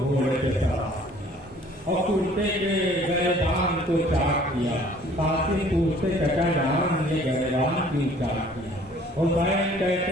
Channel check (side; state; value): both; normal; correlation 0.55